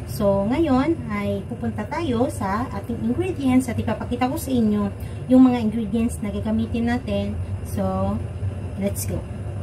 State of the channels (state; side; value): identical; both; correlation 1.00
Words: So, ngayon ay pupunta tayo sa ating ingredients at ipapakita ko sa inyo yung mga ingredients na gagamitin natin. So, let's go!